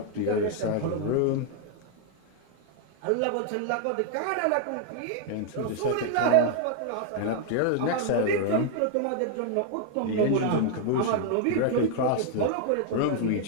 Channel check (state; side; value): different; both; correlation 0.00